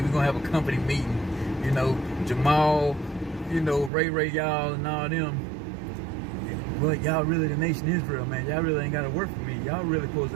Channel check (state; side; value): drops out; left; at 3.9 s